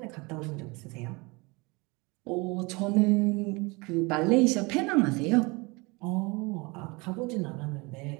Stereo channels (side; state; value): left; quieter; 26.4 dB